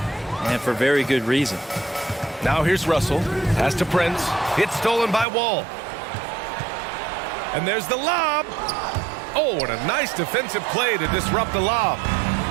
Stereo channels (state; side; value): drops out; left; at 5.2 s